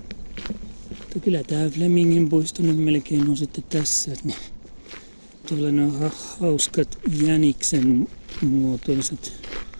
Mutta kyllä tää Flemingin puisto nyt melkein on sitten tässä. Niin. Tuolla ne on hauskat jäniksen muotoiset.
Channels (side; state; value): both; inverted; correlation -1.00